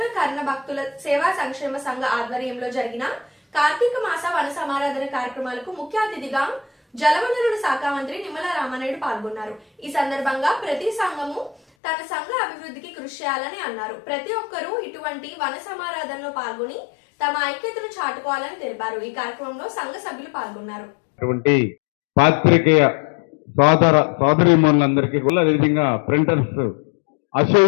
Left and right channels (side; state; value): right; drops out; at 11.6 s